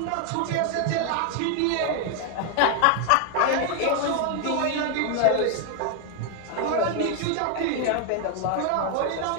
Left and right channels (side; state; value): both; different; correlation 0.00